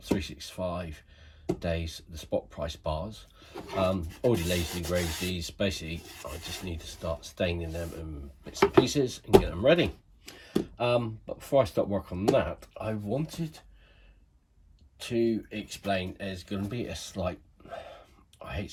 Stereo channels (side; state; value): both; identical; correlation 1.00